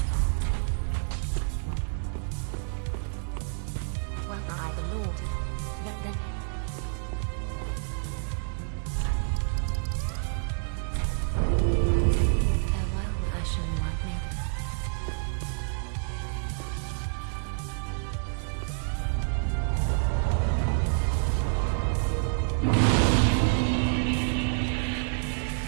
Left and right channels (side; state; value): left; silent; digital silence